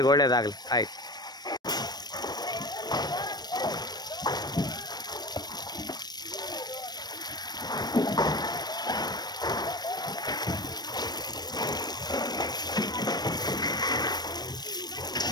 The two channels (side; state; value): right; late; 0.19 ms